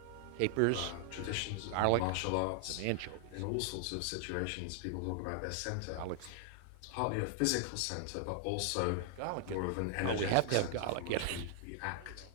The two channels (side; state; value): both; different; correlation 0.00